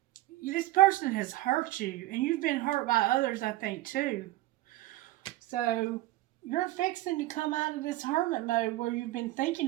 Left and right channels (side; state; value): left; quieter; 17.2 dB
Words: this person has hurt you, and you've been hurt by others, I think, too. So, you're fixing to come out of this hermit mode where you've been